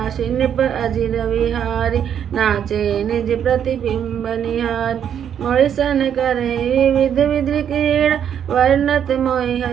नृप अजिर विहारी, नाचे निज प्रतिबिंब निहार। मोहिसन करे विविध विधि क्रीड़ा, वर्णत मोहि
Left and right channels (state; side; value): quieter; left; 8.9 dB